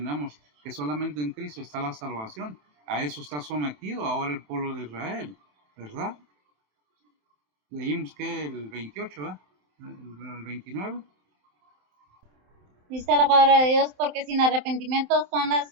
que solamente en Cristo está la salvación. A eso está sometido ahora el pueblo de Israel, ¿verdad? Leímos que el 28, ¿verdad? El 29. Dice la palabra de Dios, porque sin arrepentimiento son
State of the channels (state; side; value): late; left; 27 ms